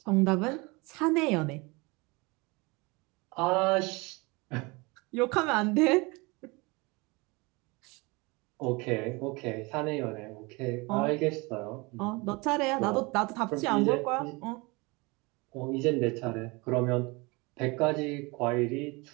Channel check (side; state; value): left; quieter; 26.2 dB